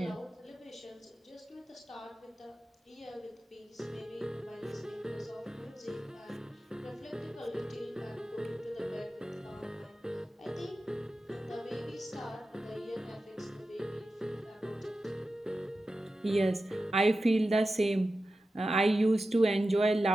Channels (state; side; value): normal; both; correlation 0.93